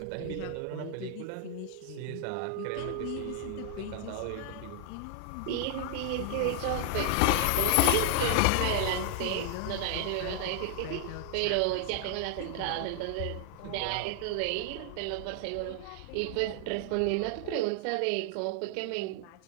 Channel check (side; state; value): both; different; correlation 0.00